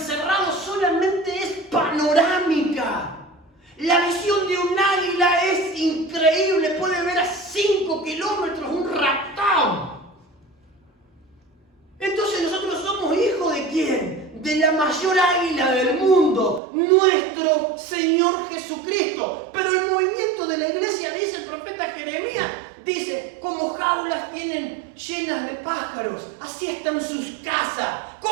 solamente es panorámica. La visión de un águila es increíble. Puede ver a 5 kilómetros un raptón. Entonces nosotros somos hijos ¿de quién? De la mayor águila del mundo, nuestro Señor Jesucristo. Pero el movimiento de la iglesia, dice el profeta Jeremías, dice, como jaulas tienen llenas de pájaros, así están sus casas.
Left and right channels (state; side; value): drops out; left; at 16.6 s